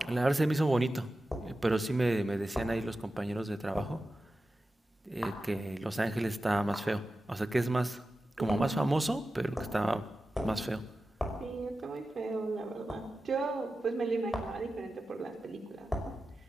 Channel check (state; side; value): normal; both; correlation 0.93